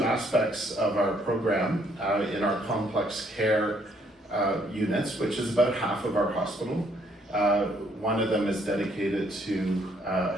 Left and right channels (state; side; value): normal; both; correlation 0.68